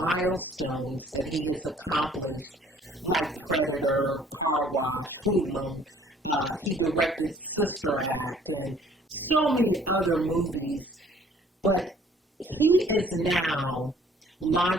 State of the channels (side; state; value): both; normal; correlation 0.57